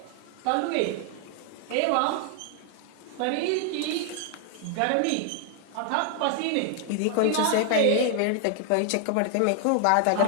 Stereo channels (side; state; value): both; different; correlation 0.00